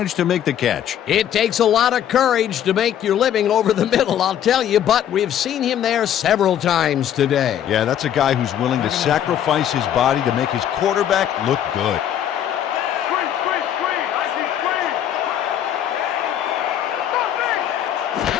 to make the catch. It takes a lot of courage to make your living over the middle, I'll tell you, but we've seen him there several times today. Yeah, that's a guy who's willing to sacrifice his body to make his quarterback look good.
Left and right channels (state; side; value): quieter; right; 10.3 dB